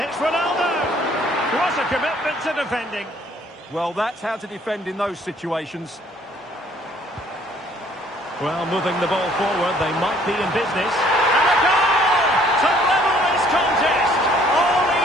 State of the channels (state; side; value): normal; both; correlation 0.60